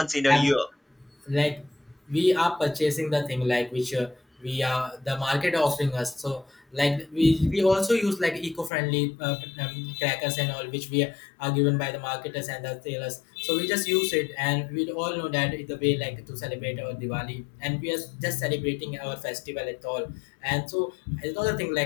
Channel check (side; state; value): right; drops out; at 8.7 s